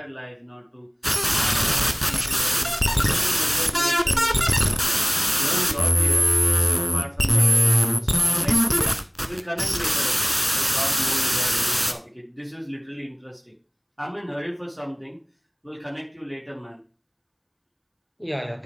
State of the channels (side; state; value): both; identical; correlation 1.00